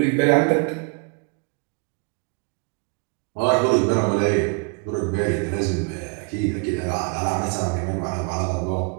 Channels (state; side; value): quieter; left; 33.7 dB